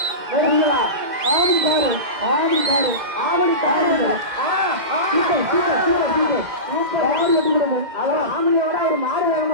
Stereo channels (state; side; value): late; left; 2.1 ms